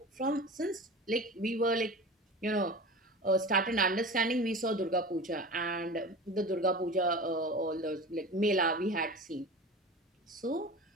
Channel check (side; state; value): both; normal; correlation 0.33